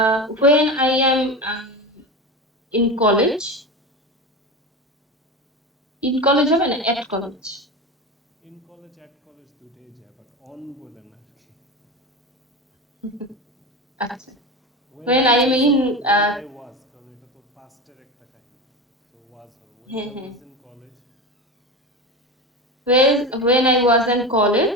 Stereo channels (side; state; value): both; normal; correlation 0.25